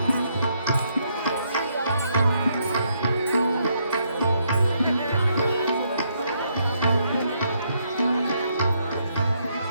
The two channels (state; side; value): inverted; both; correlation -0.74